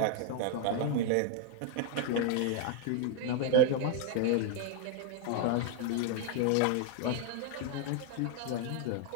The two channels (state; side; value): different; both; correlation 0.00